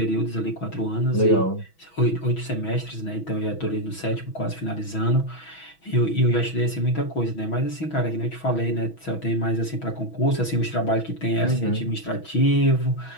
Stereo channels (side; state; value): right; late; 6.1 ms